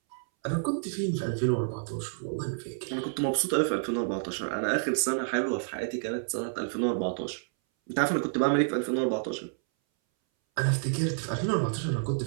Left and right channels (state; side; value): silent; left; 58 dB below the other